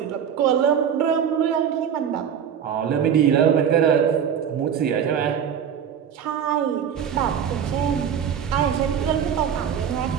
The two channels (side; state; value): left; quieter; 8.2 dB